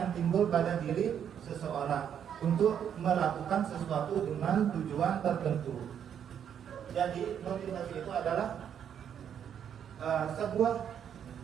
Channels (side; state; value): left; quieter; 8.7 dB